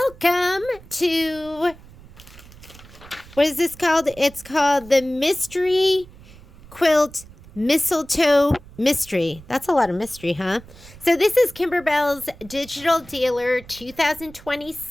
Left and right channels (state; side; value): noise; right; rumble, 21 dB below the sound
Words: to, what is this called? It's called the Mystery Quilt Mistletoe Mystery. That's a lot of mystery, huh? So this is Kimberbell's Digital Dealer